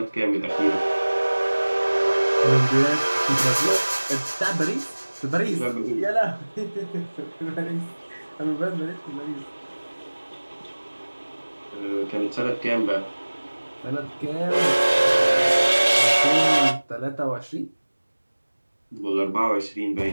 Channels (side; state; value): both; inverted; correlation -1.00